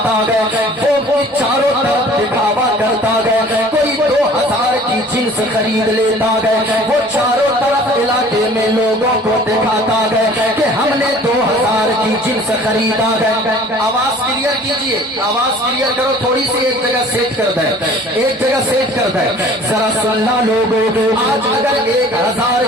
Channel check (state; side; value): normal; both; correlation 0.49